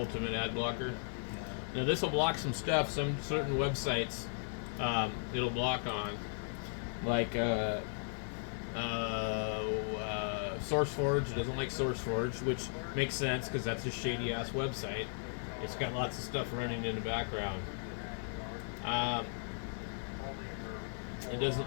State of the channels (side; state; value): right; silent; 53 dB below the other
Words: Ad Blocker. Now this will block some stuff, some certain websites it'll block on, like SourceForge. Doesn't like SourceForge, which makes sense because that's a shady ass website. It's got lots of stuff running in the background. It